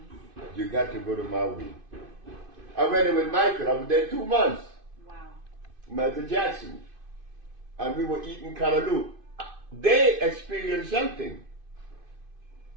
You got to go to Maui. I went there with Michael. I was there 2 months. Wow. Michael Jackson. And we were eating callaloo. They experienced something.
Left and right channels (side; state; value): left; late; 2.5 ms